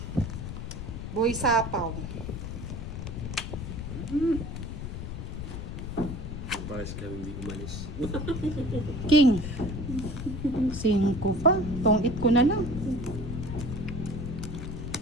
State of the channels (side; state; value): left; noise; rumble, 6 dB below the sound